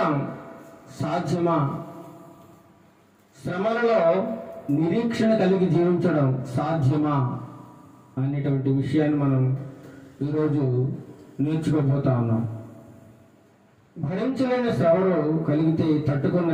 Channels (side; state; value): both; identical; correlation 1.00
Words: సాధ్యమా? శ్రమలలో నిరీక్షణ కలిగి జీవించడం సాధ్యమా అనేటువంటి విషయాన్ని మనం ఈరోజు నేర్చుకోబోతా ఉన్నాం. భరించలేని శ్రమలు కలిగితే తట్టుకొని